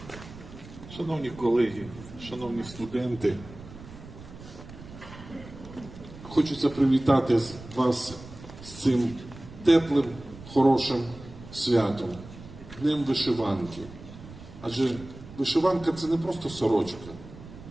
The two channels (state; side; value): noise; right; rumble, 16 dB below the sound